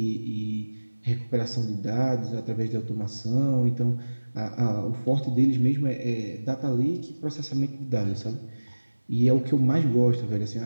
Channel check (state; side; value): inverted; both; correlation -1.00